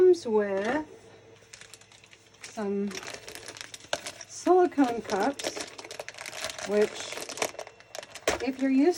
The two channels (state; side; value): identical; both; correlation 1.00